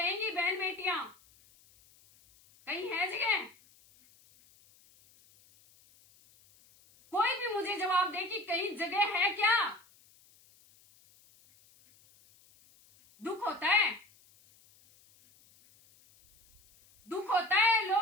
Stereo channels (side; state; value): left; noise; hiss, 29 dB below the sound